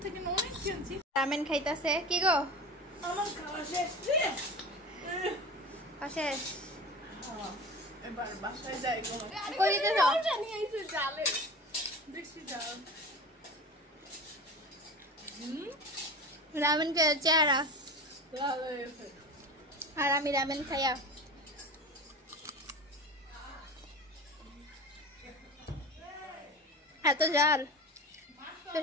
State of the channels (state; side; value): normal; both; correlation 0.32